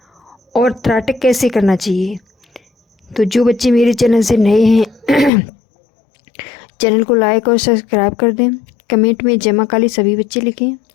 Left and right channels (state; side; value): drops out; right; at 5.3 s